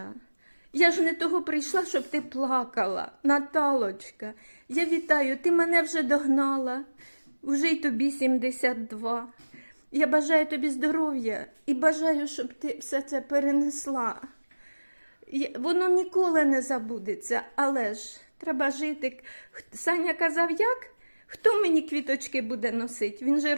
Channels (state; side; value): inverted; both; correlation -1.00